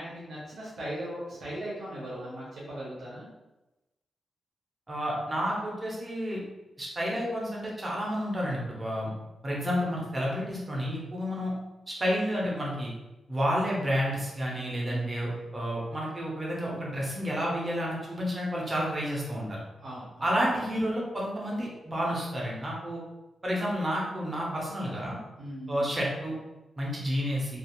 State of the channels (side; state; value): both; normal; correlation 0.87